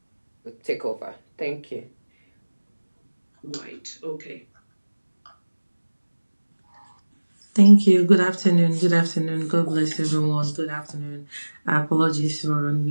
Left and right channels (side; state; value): both; inverted; correlation -1.00